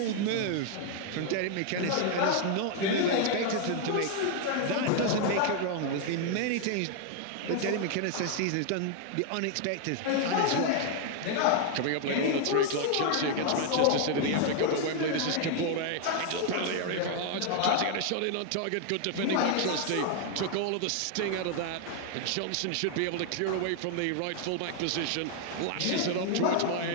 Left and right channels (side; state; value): both; different; correlation 0.00